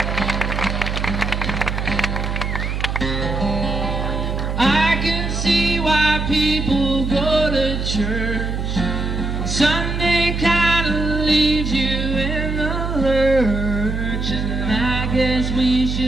I can see why people go to church. Sunday kind of leaves you in the lurch. And I guess we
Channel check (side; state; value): right; noise; hum, 2 dB below the sound